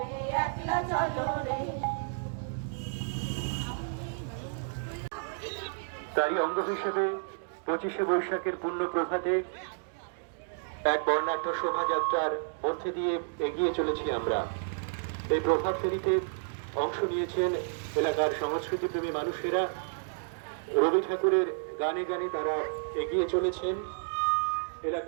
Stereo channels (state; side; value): silent; left; digital silence